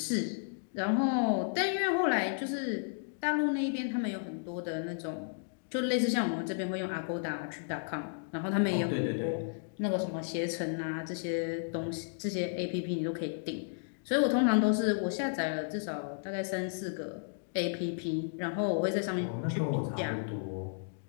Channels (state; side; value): silent; right; digital silence